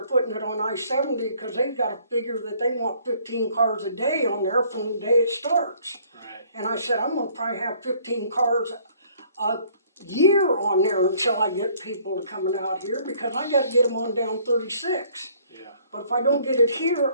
putting it on I-70, because they've gotta figure that they want 15 cars a day on there from the day it starts. Right. And I said, I'm gonna probably have 15 cars a year on there until I get people coming out here, because I gotta get them on down 36. Yeah. But if I don't get it here,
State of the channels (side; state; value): both; inverted; correlation -0.59